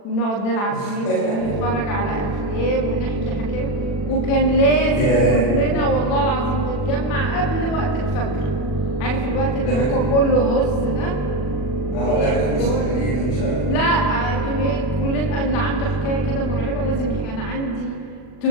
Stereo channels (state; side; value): late; right; 40 ms